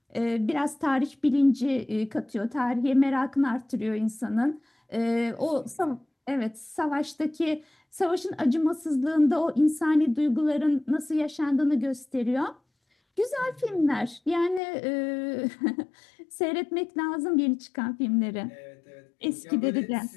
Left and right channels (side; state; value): right; drops out; at 14.6 s